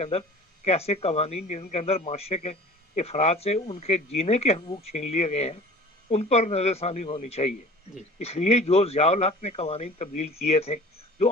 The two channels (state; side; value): normal; both; correlation 0.43